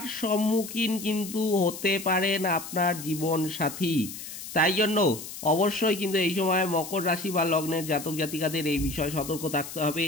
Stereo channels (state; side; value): noise; left; hiss, 11 dB below the sound